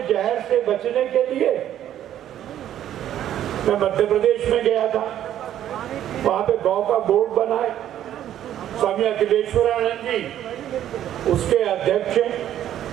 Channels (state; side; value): quieter; left; 11.3 dB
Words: जहर से बचने के लिए। मैं मध्य प्रदेश में गया था, वहां पे गौ का बोर्ड बना है, स्वामी अखिलेश्वरानंद जी उसके अध्यक्ष हैं।